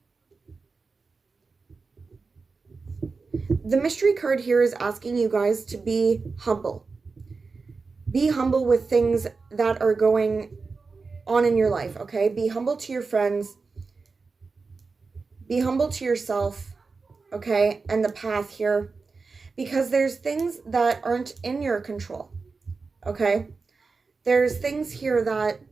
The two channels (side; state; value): left; quieter; 4.4 dB